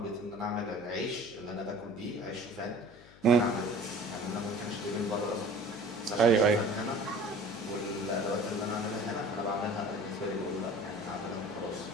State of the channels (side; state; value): left; noise; hum, 24 dB below the sound